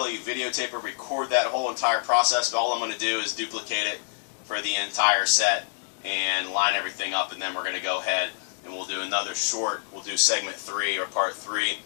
videotape or record that whole entire process, but all I'm going to do is duplicate it for the entire set and line everything up, and then we're going to go ahead and we'll do another short. We'll do segment 3 or part 3,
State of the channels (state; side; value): silent; right; digital silence